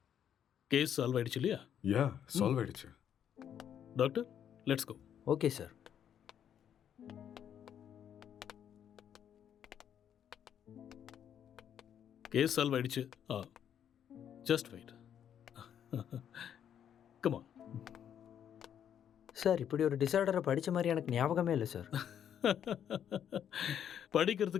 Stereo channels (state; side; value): quieter; right; 9.2 dB